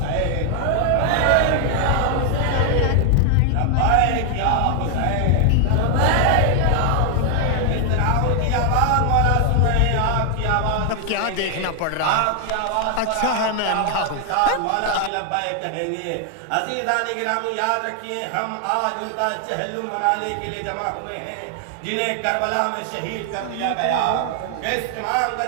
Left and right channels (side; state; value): both; different; correlation 0.00